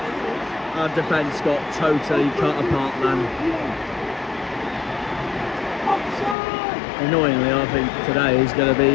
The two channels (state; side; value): drops out; right; at 6.4 s